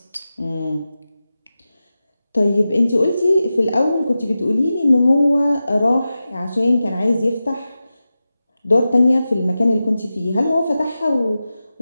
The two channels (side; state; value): both; inverted; correlation -0.93